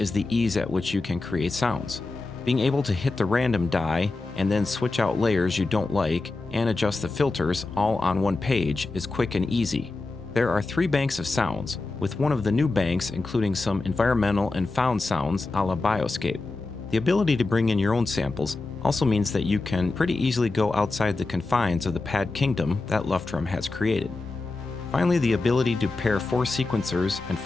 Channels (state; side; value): quieter; right; 3.4 dB